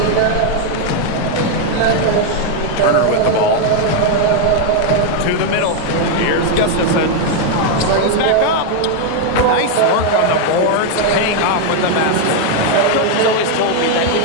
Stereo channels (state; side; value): different; both; correlation 0.01